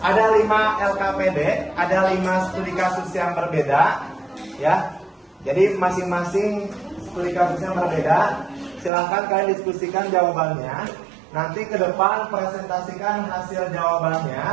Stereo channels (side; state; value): left; drops out; at 8.9 s